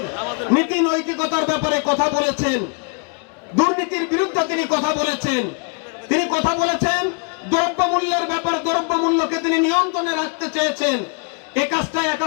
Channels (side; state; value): right; quieter; 37.1 dB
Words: নীতি নৈতিকতার ব্যাপারে কথা বলেছেন, দুর্নীতির বিরুদ্ধে তিনি কথা বলেছেন। তিনি কথা বলেছেন দ্রব্যমূল্যের ব্যাপারে, দ্রব্যমূল্যকে তিনি নিয়ন্ত্রণে রাখতে চেয়েছেন। এই কাজটা